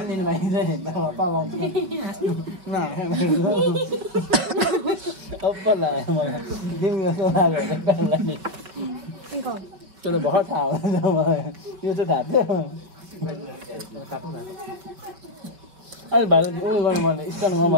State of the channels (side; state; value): left; late; 5.2 ms